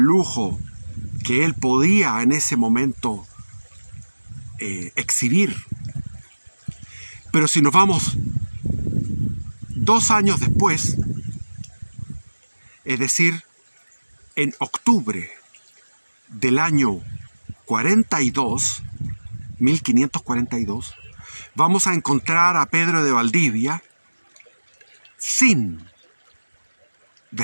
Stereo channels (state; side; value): inverted; both; correlation -1.00